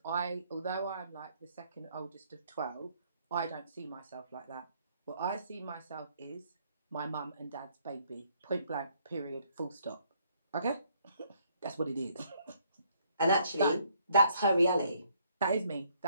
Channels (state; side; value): inverted; both; correlation -0.68